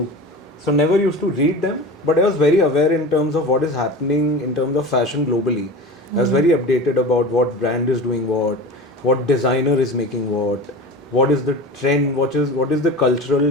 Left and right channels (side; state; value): both; normal; correlation 0.32